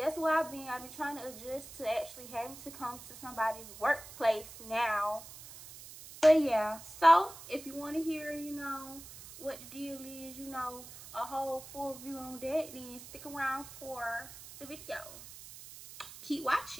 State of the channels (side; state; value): right; noise; hiss, 15 dB below the sound